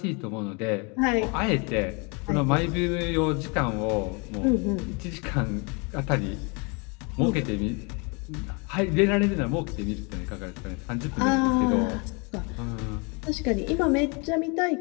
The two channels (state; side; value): quieter; right; 31.7 dB